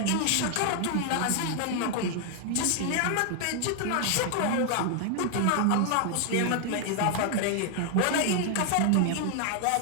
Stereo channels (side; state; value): both; different; correlation 0.00